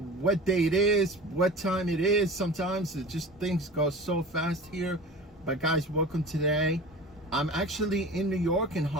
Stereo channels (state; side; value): normal; both; correlation 0.37